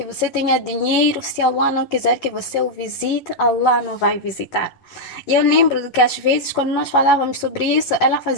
você tenha dinheiro, se Allah não quiser que você o visite, Allah não vai visitar. E eu lembro que às vezes, quando nós falávamos sobre isso, ela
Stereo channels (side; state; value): right; late; 11 ms